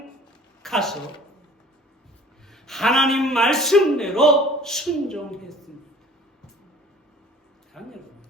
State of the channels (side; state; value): both; normal; correlation 0.49